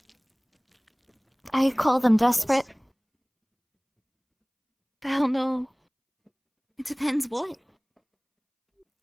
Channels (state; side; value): identical; both; correlation 1.00